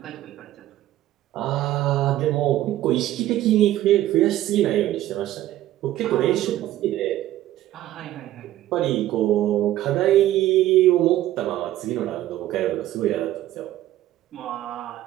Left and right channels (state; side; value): quieter; left; 14.0 dB